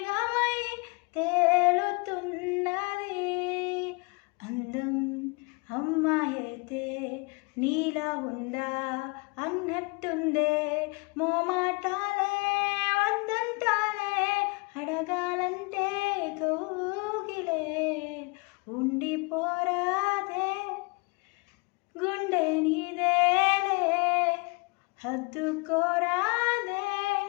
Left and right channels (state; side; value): quieter; right; 30.4 dB